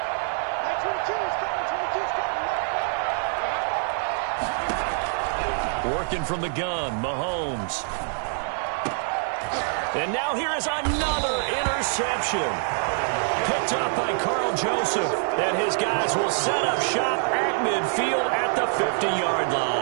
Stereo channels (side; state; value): left; silent; 61 dB below the other